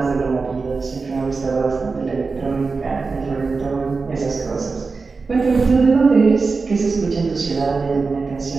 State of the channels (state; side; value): quieter; left; 4.3 dB